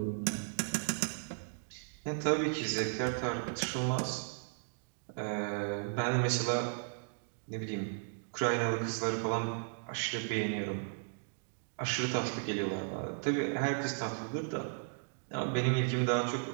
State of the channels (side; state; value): left; silent; digital silence